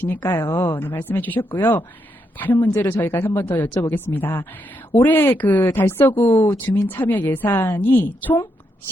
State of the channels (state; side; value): normal; both; correlation 0.80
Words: 네, 말씀해 주셨고요. 다른 문제로 저희가 한 번 더 여쭤보겠습니다. 올해 그 달서구 주민 참여 예산이 총